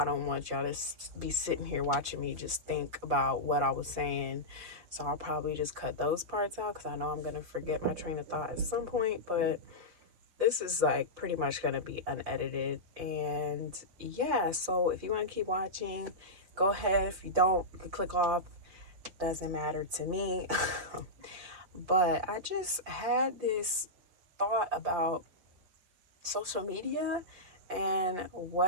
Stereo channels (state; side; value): late; left; 5.5 ms